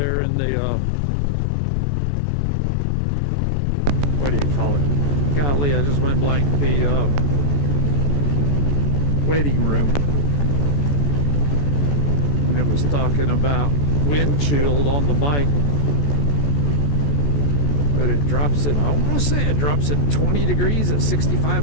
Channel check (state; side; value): late; right; 14 ms